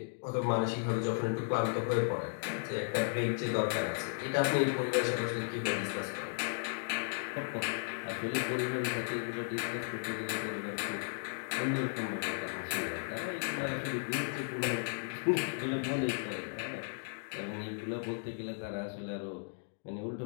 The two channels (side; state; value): right; silent; digital silence